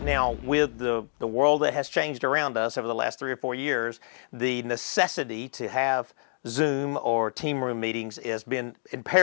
now with the world that has changed around us over the last 3 or 4 years, the necessity to have Zoom or team room meetings has been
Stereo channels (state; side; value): silent; right; digital silence